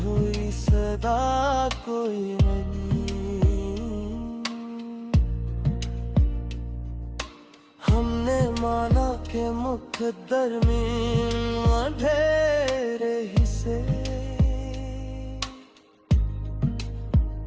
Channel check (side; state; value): both; identical; correlation 1.00